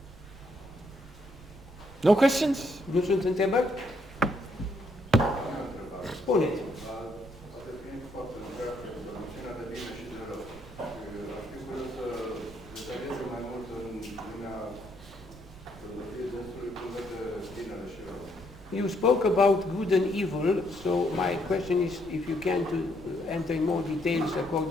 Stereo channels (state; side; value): noise; right; rumble, 18 dB below the sound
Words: No questions? nu sunt întrebări? Spuneți. Poate fiind foarte întreagă, noțiunea de bine și de rău. Aș fi curios să detalieze mai mult în lumea filozofiei dânsului cum vede binele și rău. You spoke about good and evil, so my question is if you can to enter in more details